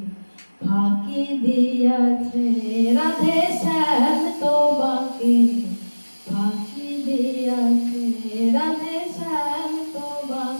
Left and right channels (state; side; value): inverted; both; correlation -1.00